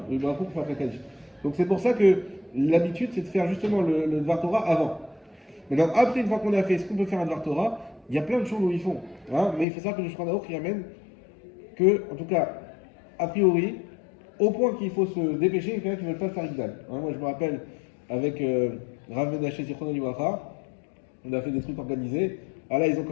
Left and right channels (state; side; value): drops out; right; at 9.7 s